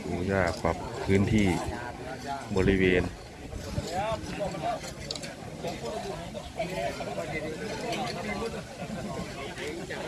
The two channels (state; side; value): identical; both; correlation 1.00